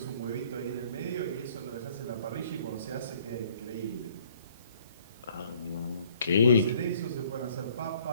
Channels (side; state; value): both; inverted; correlation -0.60